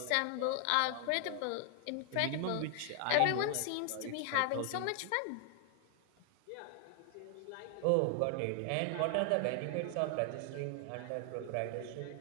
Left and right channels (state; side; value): different; both; correlation 0.00